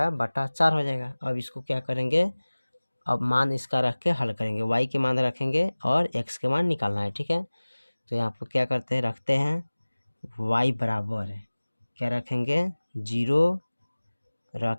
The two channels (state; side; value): inverted; both; correlation -1.00